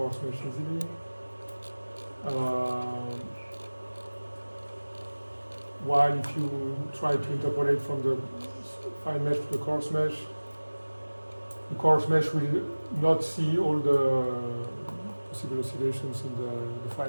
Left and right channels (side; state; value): both; inverted; correlation -1.00